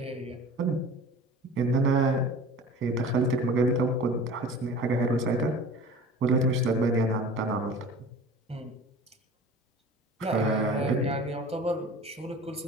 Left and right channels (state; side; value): normal; both; correlation 0.40